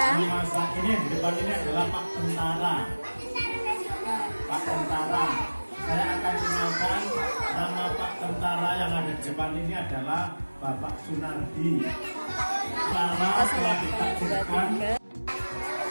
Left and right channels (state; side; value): inverted; both; correlation -1.00